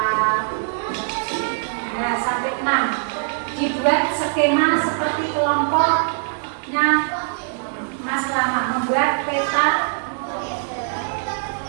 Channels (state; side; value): silent; left; digital silence